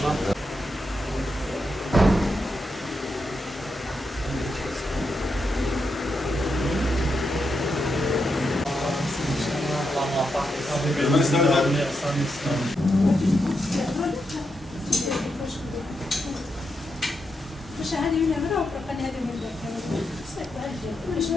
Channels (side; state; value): both; normal; correlation 0.84